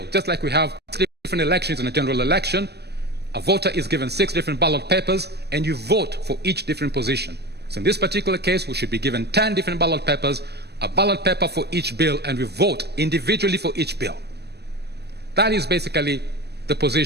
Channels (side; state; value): left; late; 0.48 ms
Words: just like we have 3 different elections in a general election. A voter is given 6 different ballot papers, and you vote for each different position. So in this particular case, we should be given 10 different ballot papers, a ballot paper for each bill, and we vote individually for each bill. That is basically the